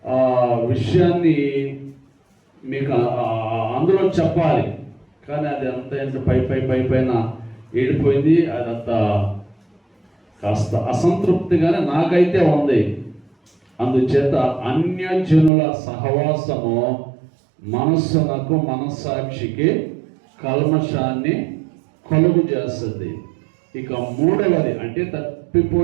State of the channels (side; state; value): left; drops out; at 15.5 s